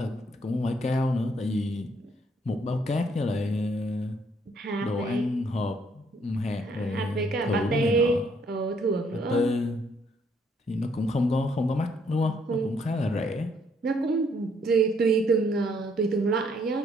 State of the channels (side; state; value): both; normal; correlation 0.68